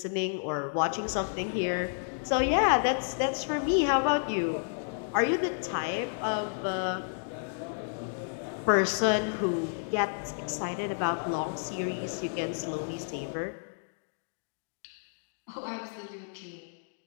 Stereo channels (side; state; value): right; silent; digital silence